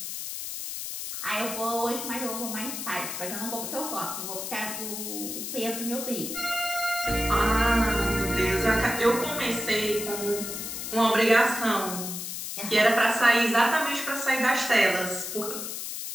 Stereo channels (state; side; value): noise; left; hiss, 6 dB below the sound